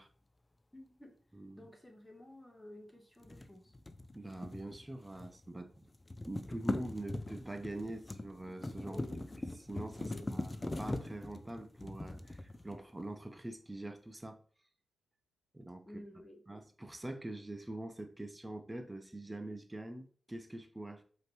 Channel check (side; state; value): both; normal; correlation 0.96